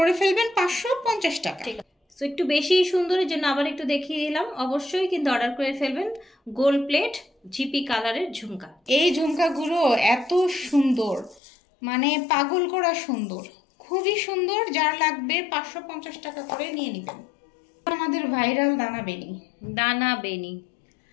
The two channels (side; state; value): right; drops out; at 11.4 s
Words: ফেলবেন 550 টাকা। ঠিক আছে, সো একটু বেশি সুন্দরের জন্য আবার একটু দেখিয়ে দিলাম। অবশ্যই কিন্তু অর্ডার করে ফেলবেন গোল্ড প্লেট জিপি কালারের ঝুমকা। এই ঝুমকাগুলো এত সুন্দর, মানে পাগল করা সুন্দর, খুবই সুন্দর। যার লাগবে 550 টাকা করে নিয়ে নেবেন। আমাদের ভাইরাল দানা বেনি। দানা বেনি,